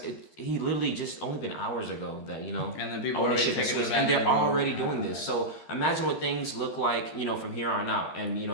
he literally just only been hours ago that, and then people ownership has switched, and they're already doing this. So imagine what things look like, from here on out and,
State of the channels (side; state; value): right; late; 13 ms